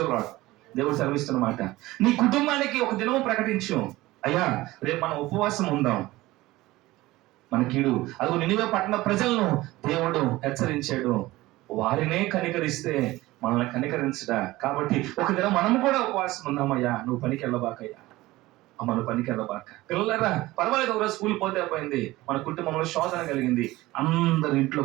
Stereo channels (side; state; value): left; quieter; 18.5 dB